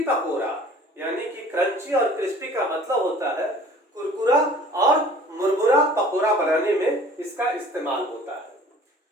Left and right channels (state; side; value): normal; both; correlation 0.49